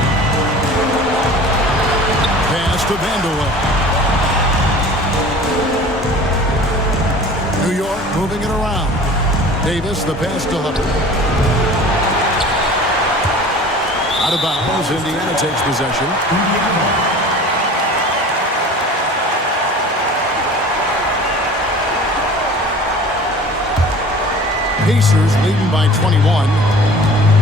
Pass to Vandeweghe. New York moving it around. Davis, the pass to Hubbard. Out of bounds. Indiana takes possession. Pacers leading by 21.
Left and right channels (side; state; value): both; normal; correlation 0.43